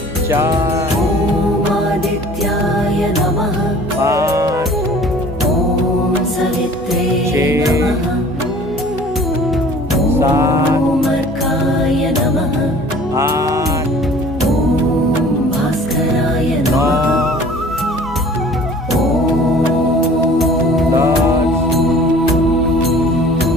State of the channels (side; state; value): both; normal; correlation 0.48